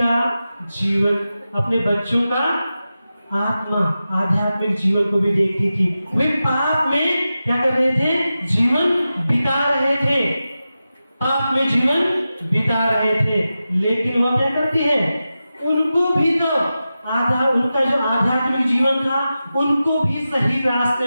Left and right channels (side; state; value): both; inverted; correlation -0.93